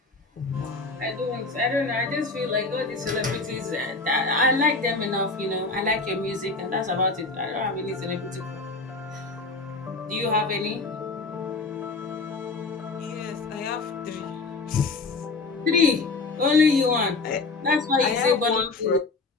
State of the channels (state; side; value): quieter; right; 3.7 dB